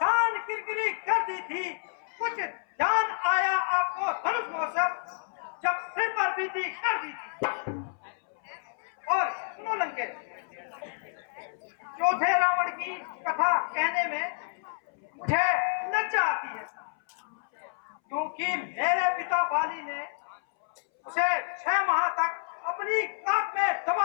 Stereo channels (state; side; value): silent; right; 58 dB below the other